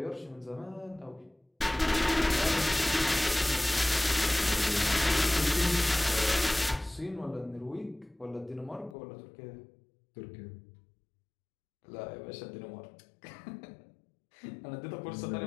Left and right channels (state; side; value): drops out; right; at 9.0 s